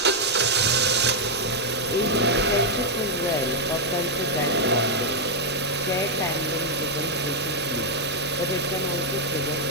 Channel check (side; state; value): both; normal; correlation -0.01